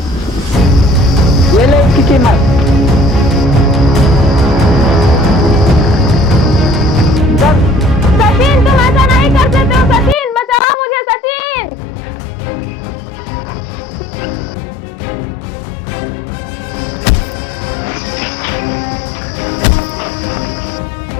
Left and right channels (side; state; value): right; drops out; at 10.6 s